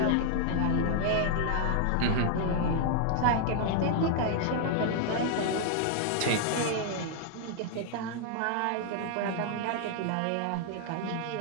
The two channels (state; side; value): different; both; correlation 0.00